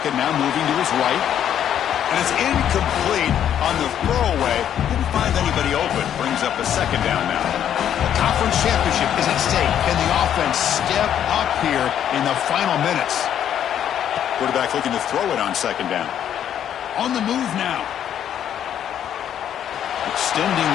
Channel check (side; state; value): right; quieter; 9.9 dB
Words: now moving to his right. And it's incomplete on the throwaway. Didn't find anybody open. Brings up a second down now. The conference championship is at stake. Can the offense step up here in the final minutes? Quarterback looking to throw it on second down. On the move now. Extending